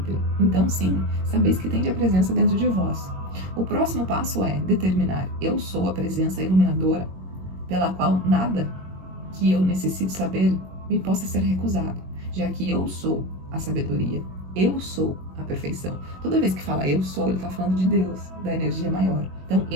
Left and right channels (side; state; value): left; late; 21 ms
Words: Então sim, sabeis que tende a presença dentro de vós. O próximo passo é determinar: eu sou a presença iluminadora, pela qual nada que eu necessite saber me possa ser recusado, já que eu sou a sabedoria. Eu sou a perfeição. Toda vez que fala eu sou, ele está falando de Deus, da energia maior. Então,